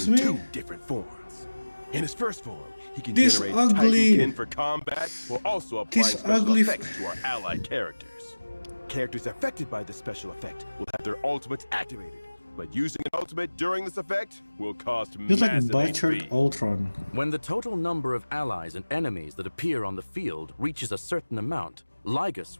between me? two different forms. In his first form, he can This generate ugly- Titankin for combat while also applying This special ugly- effects to our allied characters. Characters affected by the special effect will have their ultimates activated, but using an ultimate during this effect will cost Just like massive butchered HP. Ultron. When the total number of allies and enemies that appear on the field reaches a certain amount,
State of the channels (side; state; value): both; inverted; correlation -1.00